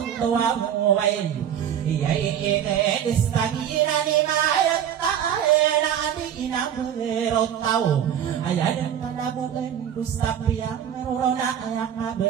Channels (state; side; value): quieter; left; 9.5 dB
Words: tua muwain Iyay ine istagina ni mayat taena adi na berotau aya dan kalabuan dusta piang merona aya